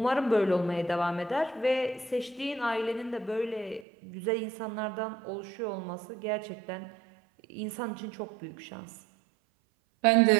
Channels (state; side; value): drops out; left; at 3.9 s